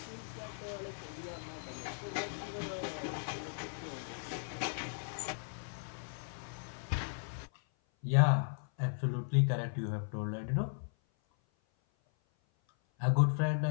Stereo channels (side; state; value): right; silent; 53 dB below the other